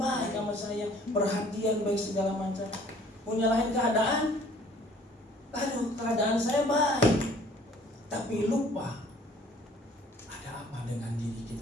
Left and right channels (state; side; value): normal; both; correlation 0.55